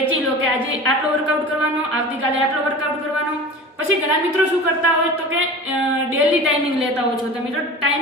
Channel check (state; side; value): normal; both; correlation 0.35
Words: લો કે આજે આટલો વર્કઆઉટ કરવાનો, આવતીકાલે આટલો વર્કઆઉટ કરવાનો। પછી ઘણા મિત્રો શું કરતા હોય તો કે ડેલી ટાઈમિંગ લેતા હોય છો તમે, તો